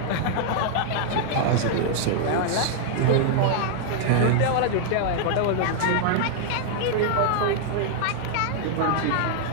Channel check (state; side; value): different; both; correlation -0.01